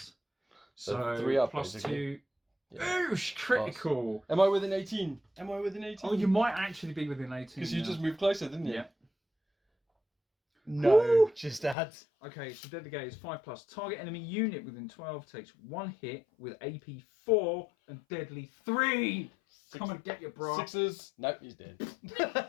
So 3 up, plus basically. 2. Yeah. Oosh, critical. Am I within 18? Am I within 18? Oh, you might actually be within 18. Because you just moved closer, didn't you? Yeah. No, Woo! just add. Okay, so Deadly Gaze 5+. Target enemy unit within 12 takes 1 hit with AP 4 and Deadly 3. Come and get your bra. 6s. Nope, he's dead.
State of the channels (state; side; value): drops out; right; at 11.8 s